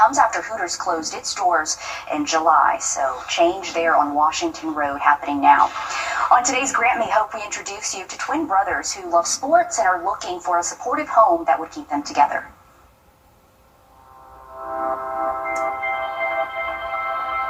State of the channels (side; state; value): both; identical; correlation 1.00